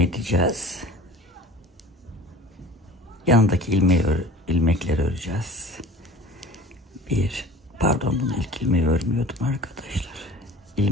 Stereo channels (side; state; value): both; normal; correlation 0.42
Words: Yanındaki ilmekleri öreceğiz. Pardon, bunu ilk ilmeği örmüyordum arkadaşlar.